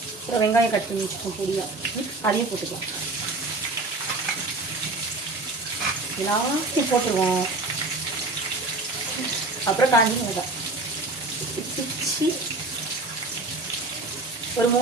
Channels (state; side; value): quieter; left; 3.1 dB